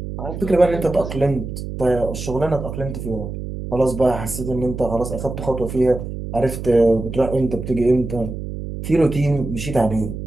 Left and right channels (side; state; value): right; noise; hum, 7 dB below the sound